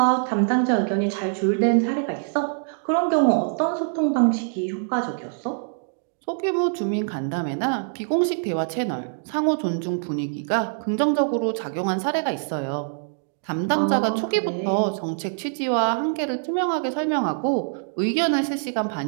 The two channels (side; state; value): left; silent; digital silence